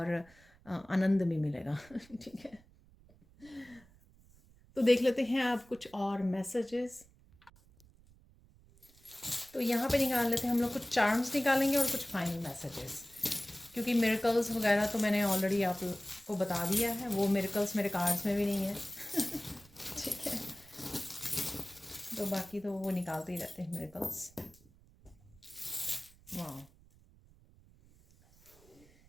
आनंद भी मिलेगा, ठीक है? तो देख लेते हैं आप कुछ और मैसेजेस। तो यहाँ पे निकाल लेते हैं हम लोग, कुछ चार्म्स निकालेंगे और कुछ फाइनल मैसेजेस, क्योंकि मिरेकल्स वगैरह तो मैंने ऑलरेडी आपको बता दिया है, वो मिरेकल्स मेरे कार्ड्स में भी नहीं है ठीक है? तो बाकी तो वो निकालते ही रहते हैं मिरेकल्स। वाह,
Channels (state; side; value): noise; right; rumble, 27 dB below the sound